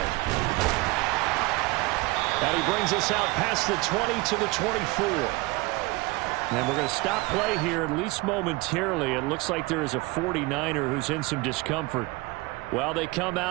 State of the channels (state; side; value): quieter; left; 23.4 dB